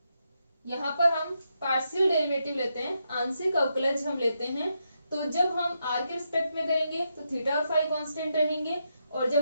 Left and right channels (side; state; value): both; inverted; correlation -0.83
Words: यहाँ पर हम पार्शियल डेरिवेटिव लेते हैं, आंशिक अवकलज हम लेते हैं। तो जब हम r के रिस्पेक्ट में करेंगे तो थीटा और फाई कांस्टेंट रहेंगे, और